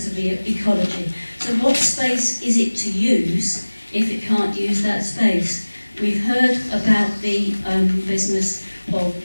of the ecology. So what space is it to use if it can't use that space? We've heard about the business of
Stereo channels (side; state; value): both; inverted; correlation -1.00